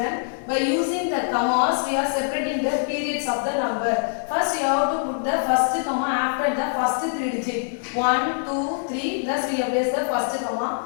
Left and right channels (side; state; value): right; silent; digital silence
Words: By using the commas, we are separating the periods of the number. First, you have to put the first comma after the first three digit. 1, 2, 3. Thus, we have placed the first